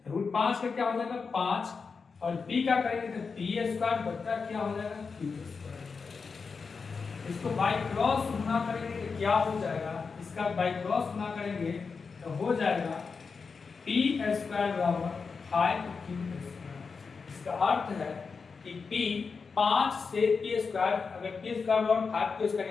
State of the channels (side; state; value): right; quieter; 5.1 dB